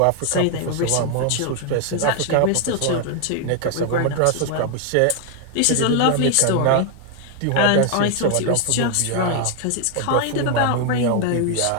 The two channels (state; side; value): different; both; correlation 0.00